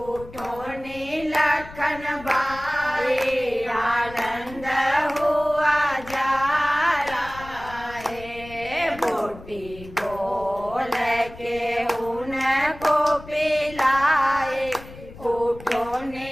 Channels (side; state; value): left; noise; rumble, 17 dB below the sound